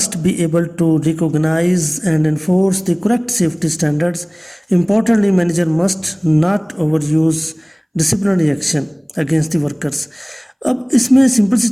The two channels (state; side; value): identical; both; correlation 1.00